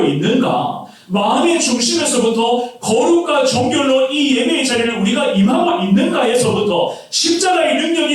있는가? 마음의 중심에서부터 거룩과 정결로 이 예배의 자리를 우리가 임하고 있는가에서부터 십자가의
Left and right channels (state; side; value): identical; both; correlation 1.00